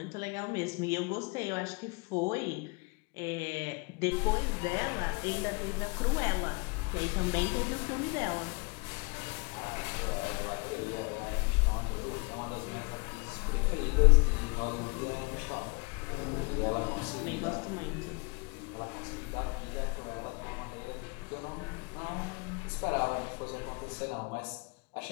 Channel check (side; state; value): right; quieter; 29.4 dB